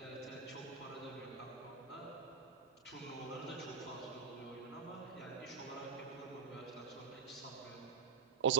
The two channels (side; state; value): left; quieter; 5.9 dB